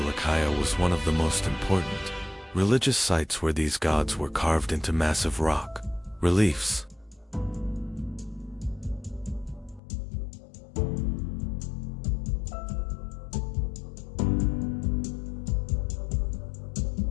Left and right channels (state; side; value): drops out; right; at 9.8 s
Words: was one of the most important religious sites where these gods were carved into massive rock reliefs.